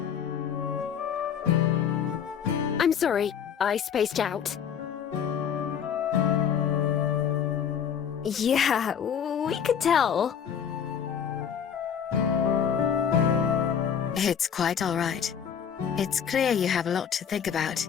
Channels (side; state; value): right; quieter; 8.0 dB